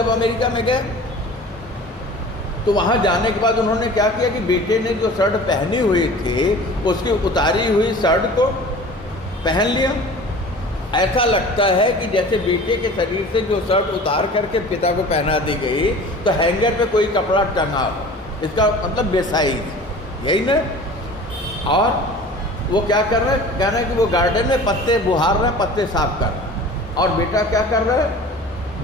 अमेरिका में गए तो वहाँ जाने के बाद उन्होंने क्या किया कि बेटे ने जो शर्ट पहनी हुई थी उसकी उतारी हुई शर्ट को पहन लिया। ऐसा लगता है कि जैसे बेटे के शरीर से जो शर्ट उतार करके पिता को पहना दी गई तो हैंगर पे कोई कपड़ा टंगा हो, इसका मतलब बेसाइज, यही ना। और वो क्या कर रहा है, कहना है कि वो गार्डन में पत्ते बुहार रहे हैं, पत्ते साफ कर रहे हैं, और बेटा क्या कर रहा है,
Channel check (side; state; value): both; normal; correlation 0.42